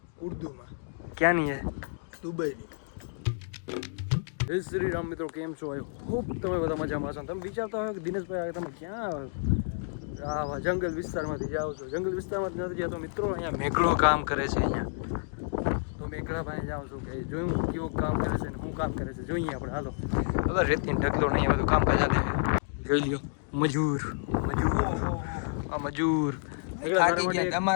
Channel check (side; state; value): right; silent; digital silence